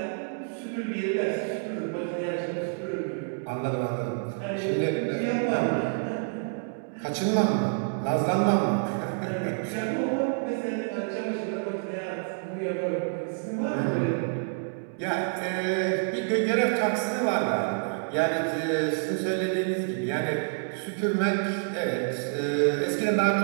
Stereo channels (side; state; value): left; silent; digital silence